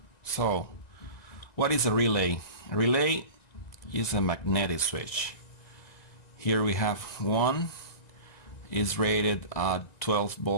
So, what is a relay? A relay is a magnetic switch. Here we have one, is rated at 12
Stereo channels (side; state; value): right; late; 1.9 ms